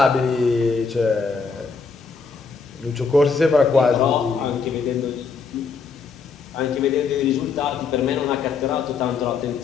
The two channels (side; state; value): right; quieter; 5.1 dB